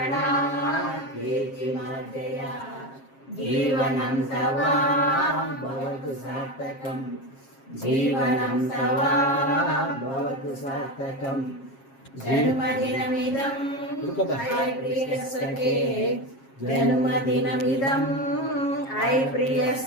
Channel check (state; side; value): late; right; 7.4 ms